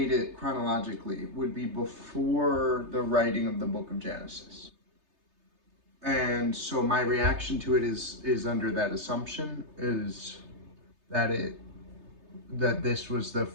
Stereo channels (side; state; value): left; late; 3.3 ms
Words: it chronologically, would be before the writing of the book of Genesis. And so my reaction to it is under that assumption, is that this was the